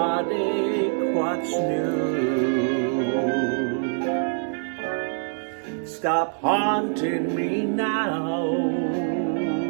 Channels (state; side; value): silent; left; 62 dB below the other